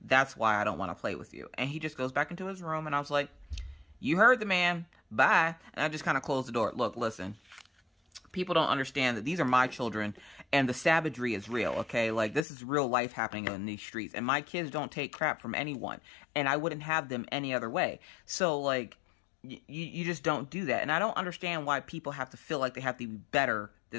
that's why I don't want to play with you. And he just goes back into his room. And I was like, you heard the man. Bye. And I just kind of closed the door. Look, listen. People don't understand that these are my children and the savagery is real, okay? Like, this is real life happening in these streets. And my kids don't take crap from anyone. And I wouldn't have them any other way. So, like, you just don't do that. And I don't understand why people have to feel like they have to be better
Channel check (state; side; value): drops out; right; at 12.5 s